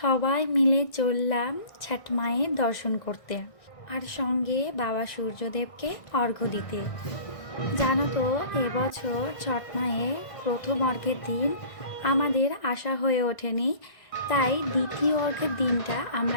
মিলে চললাম ছট মায়ের দর্শন করতে, আর সঙ্গে বাবা সূর্যদেবকে অর্ঘ্য দিতে। জানো তো, এবছর ছট মায়ের প্রথম অর্ঘ্যের দিন আমাদের আসা হয়ে ওঠেনি, তাই দ্বিতীয় অর্ঘ্যের দিনটা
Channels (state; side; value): late; right; 1.6 ms